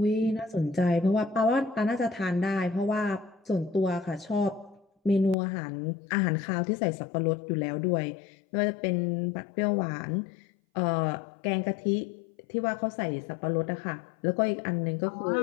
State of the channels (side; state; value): right; drops out; at 5.4 s